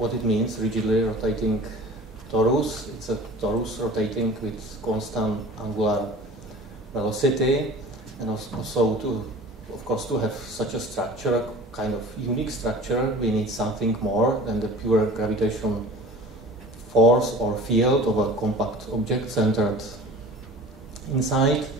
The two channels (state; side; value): normal; both; correlation 0.42